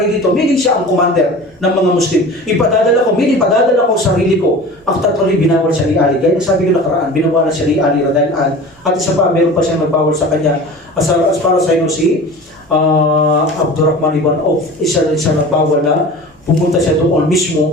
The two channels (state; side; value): normal; both; correlation 0.37